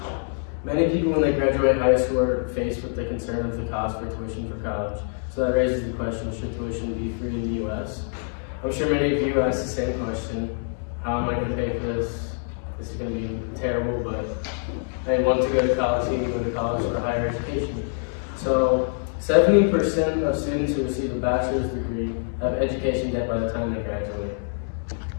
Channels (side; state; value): right; silent; 58 dB below the other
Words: Many people when they graduate high school are faced with the concern of the cost for tuition for college. So that raises the question, should tuition be free in the U.S.? I'm sure many of you asked the same question. How am I going to pay for this? This is going to be terrible, but I want to go to college, so you can go to college for higher education. So 70% of students who receive a bachelor's degree have education debt by the time they graduate.